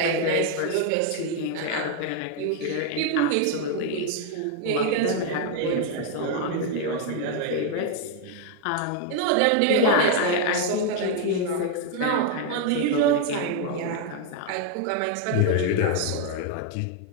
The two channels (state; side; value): different; both; correlation 0.01